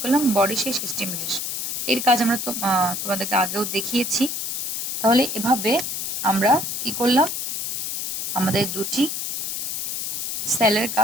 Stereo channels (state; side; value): noise; left; hiss, 3 dB below the sound